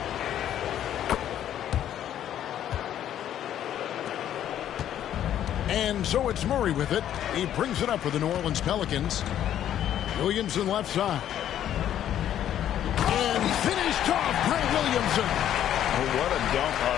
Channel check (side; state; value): right; quieter; 10.9 dB